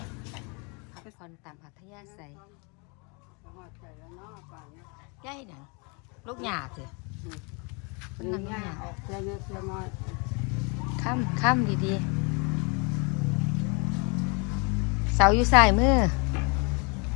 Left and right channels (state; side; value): quieter; right; 32.6 dB